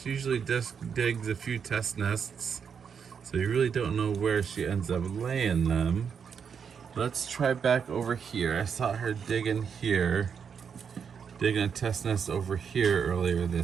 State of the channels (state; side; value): quieter; left; 6.8 dB